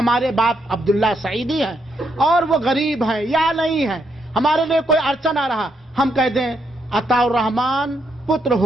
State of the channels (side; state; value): both; normal; correlation 0.77